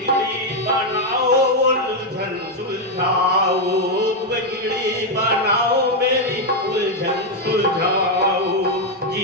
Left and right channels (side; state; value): both; normal; correlation 0.02